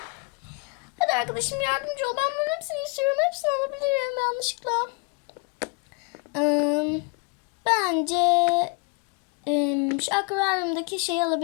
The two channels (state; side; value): quieter; right; 32.5 dB